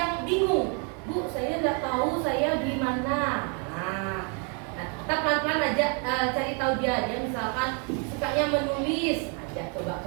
bingung, Bu, saya tidak tahu saya di mana. Nah, kita pelan-pelan aja cari tahu dia misalkan sukanya menulis, ajak coba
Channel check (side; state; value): left; quieter; 37.7 dB